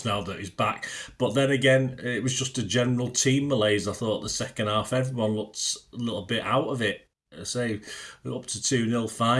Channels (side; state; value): both; identical; correlation 1.00